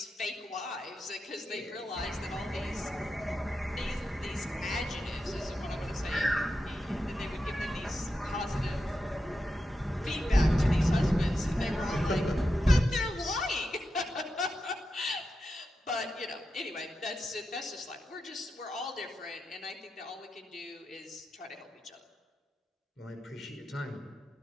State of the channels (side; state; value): both; normal; correlation 0.88